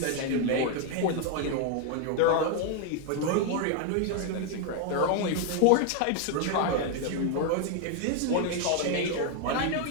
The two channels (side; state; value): both; different; correlation 0.01